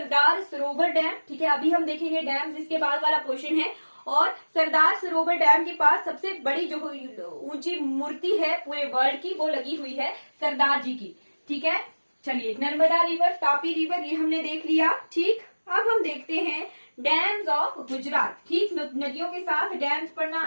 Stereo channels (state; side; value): inverted; both; correlation -1.00